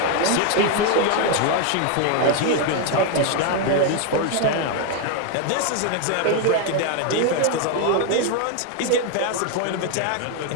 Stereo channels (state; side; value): different; both; correlation 0.01